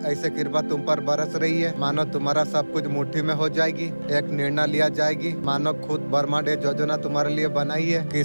ऐसे कृपा तुम पर बरस रही है। मानो तुम्हारा सब कुछ मुट्ठी में हो जाएगी। एक निर्णय लिया जाएगी। मानो खुद ब्रह्मांड योजना तुम्हारे लिए बनाई है।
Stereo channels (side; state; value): both; inverted; correlation -1.00